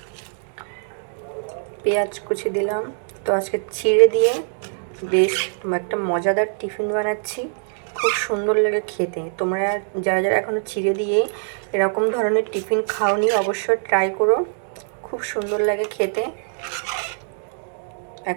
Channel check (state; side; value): silent; left; 63 dB below the other